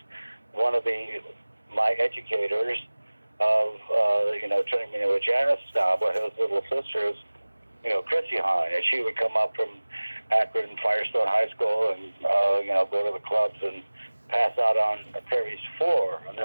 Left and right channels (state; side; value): inverted; both; correlation -1.00